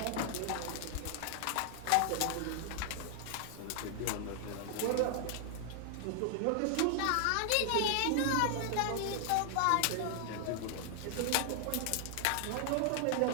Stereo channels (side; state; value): both; different; correlation 0.00